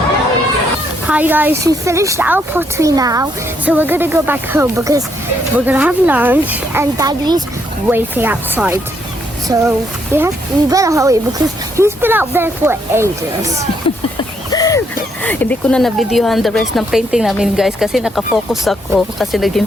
Hi guys, we finished our pottery now, so we're gonna go back home because we're gonna have lunch and Daddy's waiting outside. So we better hurry because he's been out there for ages. Hindi ko na na-videohan the rest ng painting namin guys kasi nakafocus ako kasi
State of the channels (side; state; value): both; normal; correlation 0.74